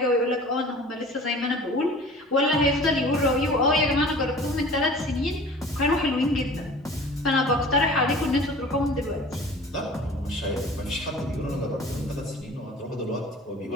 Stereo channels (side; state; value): both; normal; correlation 0.43